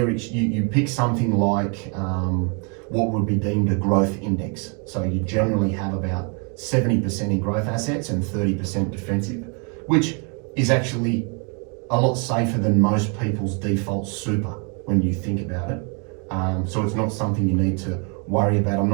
you pick something like what would be deemed a growth index. So you generally have about 70% in growth assets and 30% defensive, which is actually a lot safer than most people's default super when you think about it. So it's not something you need to worry about. I'm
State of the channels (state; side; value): quieter; left; 36.2 dB